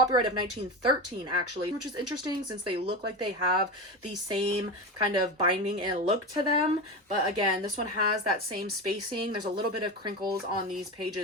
of 1913 actually, which is interesting since they look like they have the same kind of binding and look to them. But again, this one has that same spacing. There's a little bit of crinkles on these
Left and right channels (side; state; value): both; normal; correlation 0.21